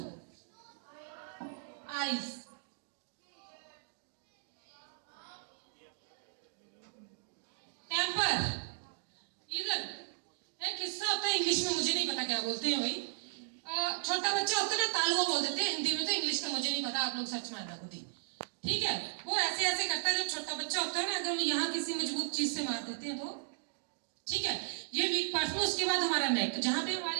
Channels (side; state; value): left; silent; digital silence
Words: आइज, टेम्पर, इधर एक हिस्सा होता है इंग्लिश में, मुझे नहीं पता क्या बोलते हैं भाई, छोटा बच्चा होता है ना, तालुआ बोल देते हैं हिंदी में, तो इंग्लिश का मुझे नहीं पता, आप लोग सर्च मारना खुद ही, ठीक है। वो ऐसे ऐसे करता है, जब छोटा बच्चा होता है ना, अगर हम यहाँ किसी मजबूत चीज से मार देते हैं तो, ठीक है, ये वीक पार्ट में। उसके बाद हमारा नेक, जहाँ पे